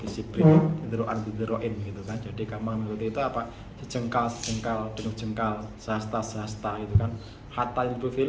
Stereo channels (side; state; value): both; identical; correlation 1.00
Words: bisibrin, dideroin gitu kan. Jadi kamu mengikuti itu apa? Sejengkal, denuk jengkal, sahasta gitu kan. Hatta